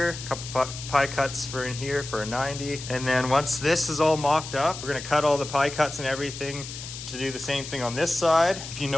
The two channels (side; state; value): left; noise; hiss, 10 dB below the sound